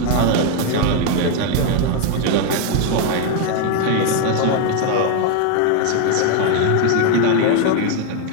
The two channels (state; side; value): different; both; correlation 0.01